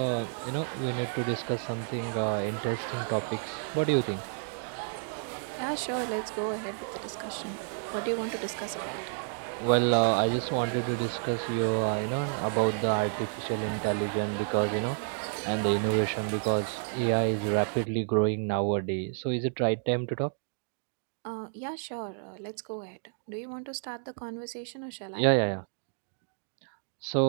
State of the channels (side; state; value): left; silent; digital silence